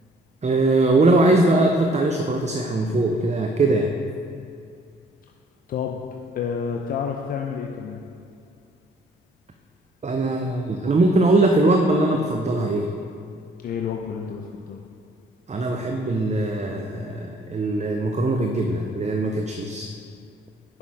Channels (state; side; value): normal; both; correlation 0.60